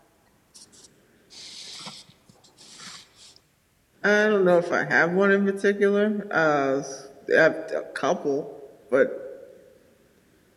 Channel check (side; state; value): both; identical; correlation 1.00